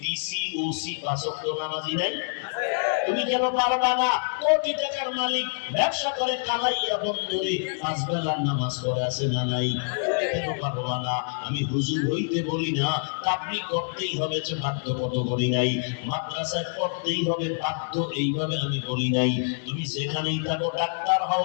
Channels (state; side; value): silent; right; digital silence